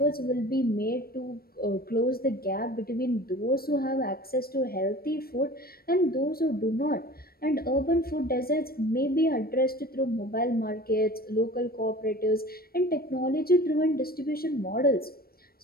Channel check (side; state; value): right; late; 0.44 ms